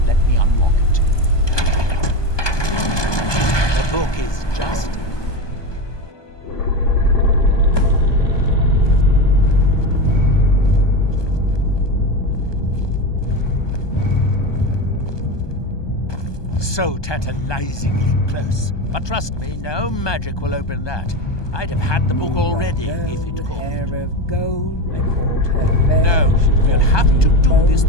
Let me unlock it. The book is just... so tantalizingly close. But trust me, no magic will open that. I'd have had the book already if it could. Hair of gold, I called her fair. No, She we'll called have me to do bold. this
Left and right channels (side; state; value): right; late; 1.2 ms